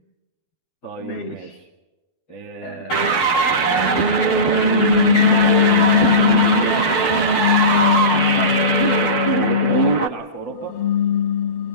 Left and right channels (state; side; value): late; right; 12 ms